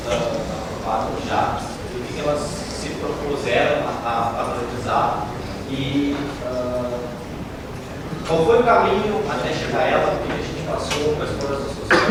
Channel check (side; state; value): both; identical; correlation 1.00